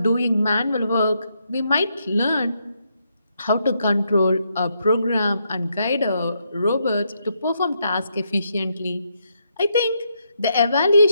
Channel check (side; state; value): both; inverted; correlation -0.78